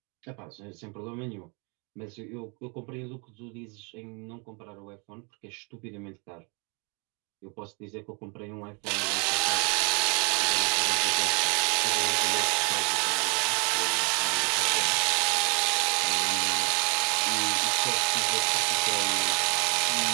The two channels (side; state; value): left; quieter; 33.4 dB